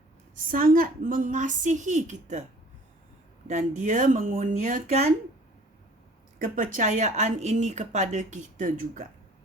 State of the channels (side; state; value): both; normal; correlation 0.51